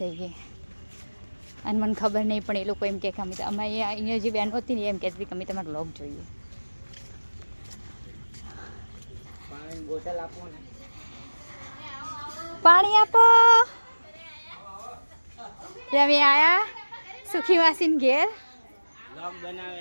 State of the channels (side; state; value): both; inverted; correlation -1.00